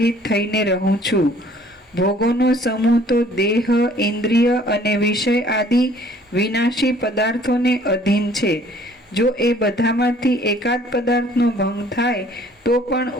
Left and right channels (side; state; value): both; normal; correlation 0.56